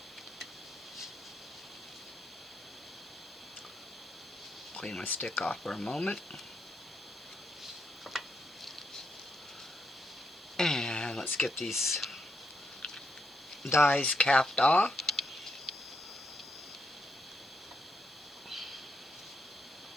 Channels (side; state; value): both; normal; correlation 0.79